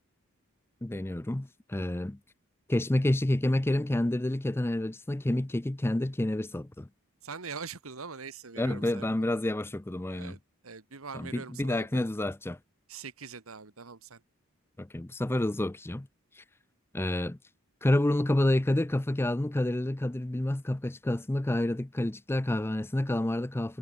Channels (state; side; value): normal; both; correlation 0.92